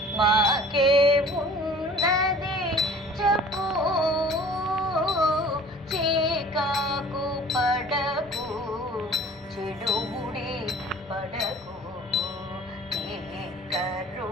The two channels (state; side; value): normal; both; correlation 0.47